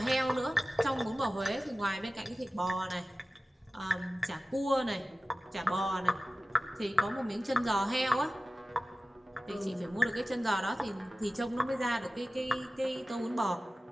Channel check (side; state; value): both; normal; correlation 0.96